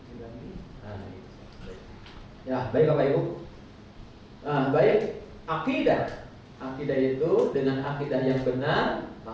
ya, baik Bapak Ibu. Baik, akidah. Akidah itu dengan akidah yang benar,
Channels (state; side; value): identical; both; correlation 1.00